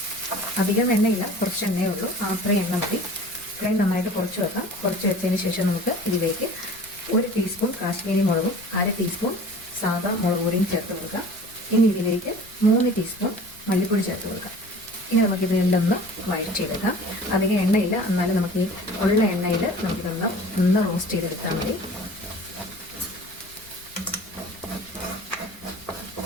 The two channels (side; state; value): left; noise; rumble, 24 dB below the sound